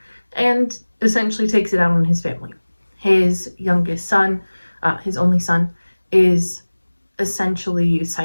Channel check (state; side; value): inverted; both; correlation -1.00